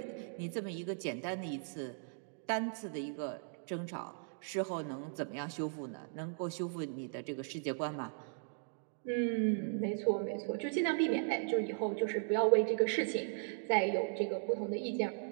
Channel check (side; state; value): left; silent; digital silence